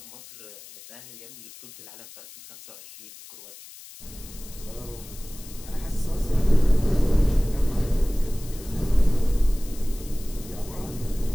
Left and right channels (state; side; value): noise; left; hiss, 18 dB below the sound